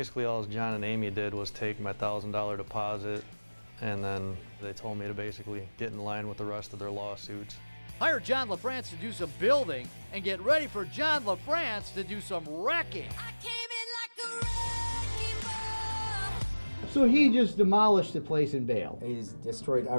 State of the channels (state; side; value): inverted; both; correlation -1.00